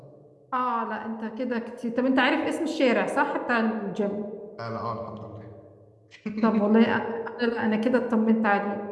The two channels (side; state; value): both; identical; correlation 1.00